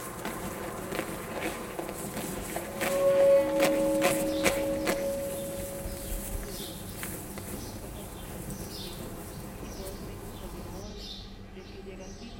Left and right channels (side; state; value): both; identical; correlation 1.00